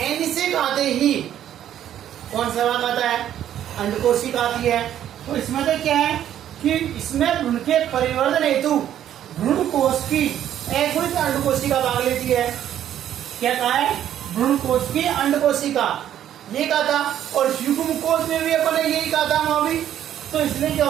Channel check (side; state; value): left; quieter; 10.9 dB